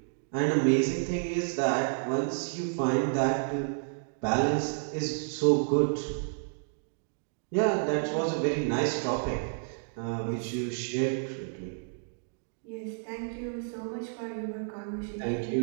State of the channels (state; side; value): silent; left; digital silence